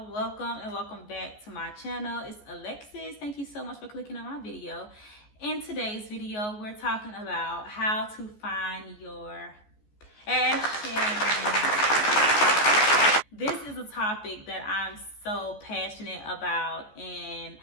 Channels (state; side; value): late; right; 14 ms